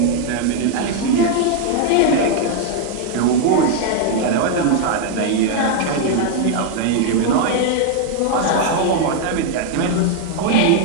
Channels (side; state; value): both; different; correlation 0.00